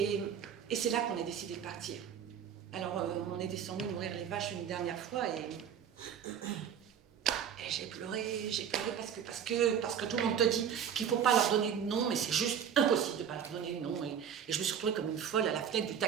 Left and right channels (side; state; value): left; quieter; 8.3 dB